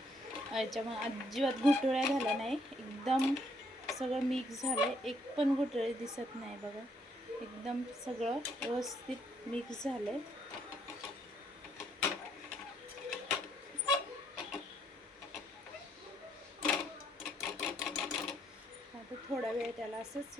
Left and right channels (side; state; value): both; normal; correlation 0.70